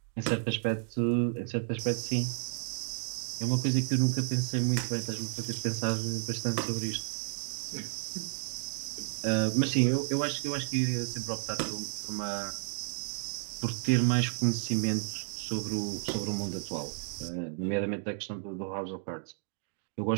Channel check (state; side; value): silent; left; digital silence